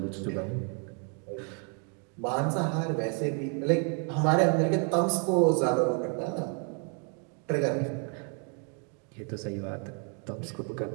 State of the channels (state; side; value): quieter; left; 39.5 dB